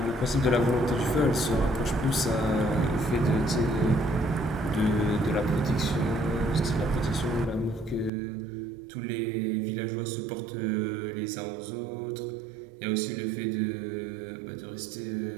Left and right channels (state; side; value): drops out; left; at 8.1 s